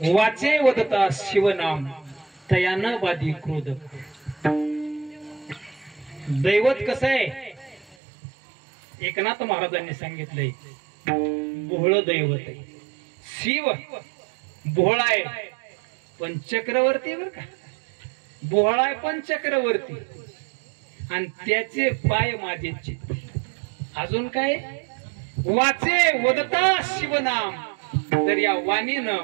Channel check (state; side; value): drops out; left; at 8.0 s